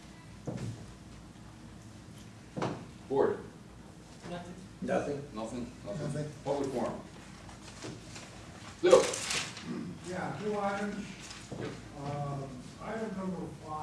Board. Nothing. Nothing. Nothing? Nothing. Public forum. Lou? Yeah, two items. Item number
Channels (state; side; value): identical; both; correlation 1.00